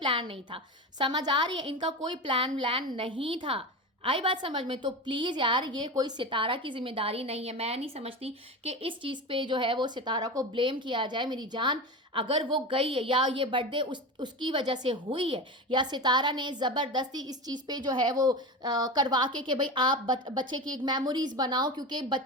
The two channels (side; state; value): both; normal; correlation 0.25